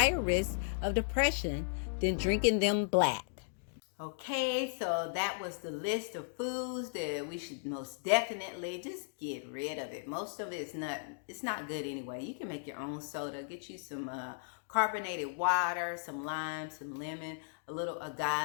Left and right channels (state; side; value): silent; right; digital silence